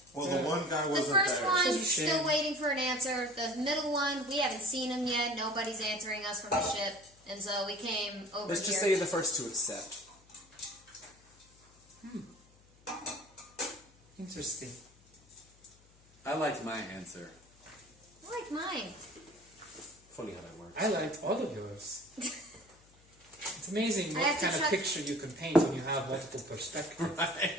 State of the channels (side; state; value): left; noise; hum, 28 dB below the sound